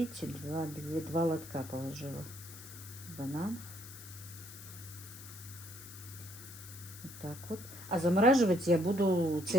два лотка положила. Банан. Вот так вот. А замораживать я буду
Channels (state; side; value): noise; left; hiss, 14 dB below the sound